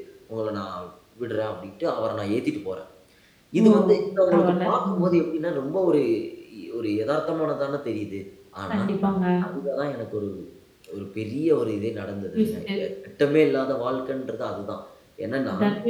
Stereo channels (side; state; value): both; identical; correlation 1.00